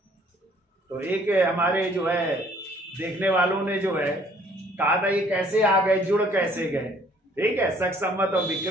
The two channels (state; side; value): normal; both; correlation 0.60